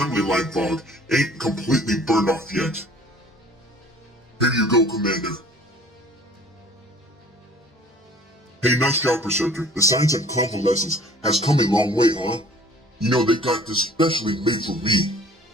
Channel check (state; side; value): normal; both; correlation 0.51